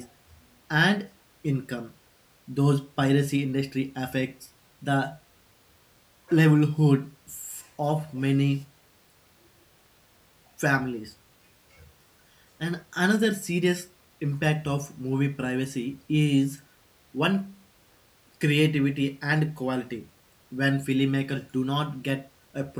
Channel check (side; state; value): both; identical; correlation 1.00